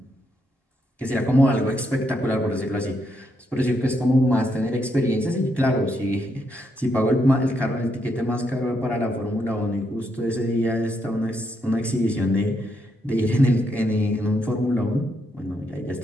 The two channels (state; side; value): normal; both; correlation 0.78